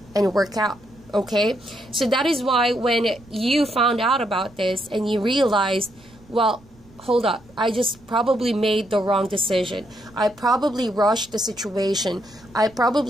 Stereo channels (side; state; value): right; noise; rumble, 26 dB below the sound